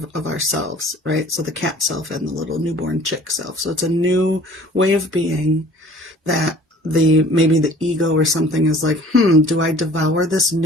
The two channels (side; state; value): both; normal; correlation 0.49